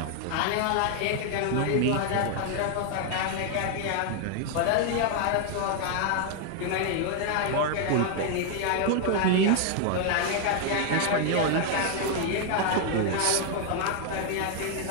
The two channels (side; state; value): both; different; correlation 0.00